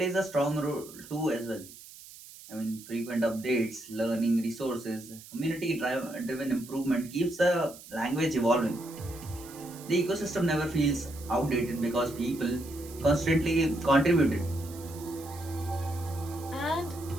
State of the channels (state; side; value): noise; right; hiss, 18 dB below the sound